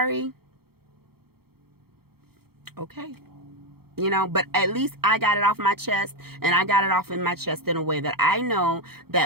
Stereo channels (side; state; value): left; late; 0.95 ms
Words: okay. But at least I got it off my chest, and I got it off in my chest in a way that I know